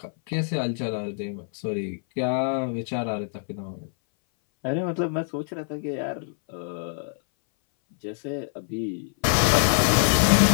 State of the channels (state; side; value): silent; right; 60 dB below the other